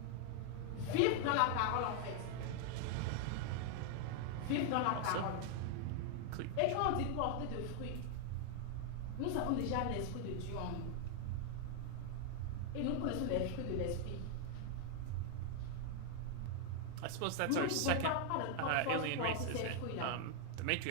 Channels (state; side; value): different; both; correlation 0.00